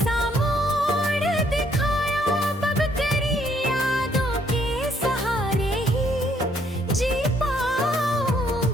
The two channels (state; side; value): normal; both; correlation 0.68